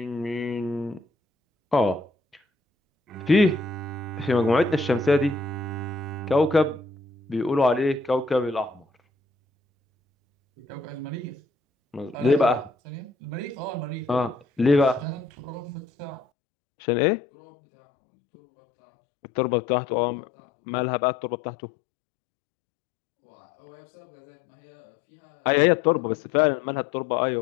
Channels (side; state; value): right; drops out; at 16.2 s